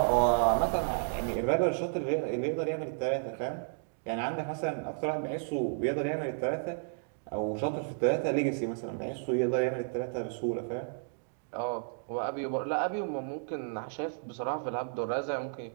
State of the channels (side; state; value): left; silent; digital silence